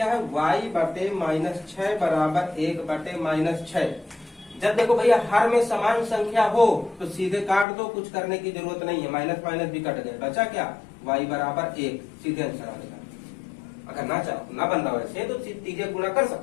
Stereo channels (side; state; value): right; drops out; at 7.7 s